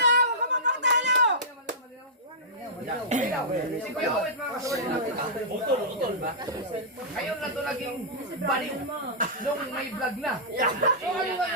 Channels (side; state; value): both; normal; correlation -0.15